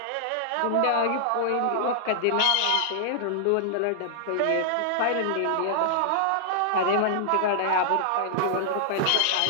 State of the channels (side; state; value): both; different; correlation -0.01